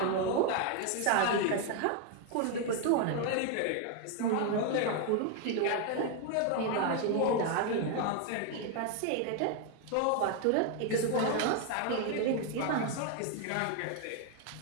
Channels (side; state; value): both; different; correlation 0.01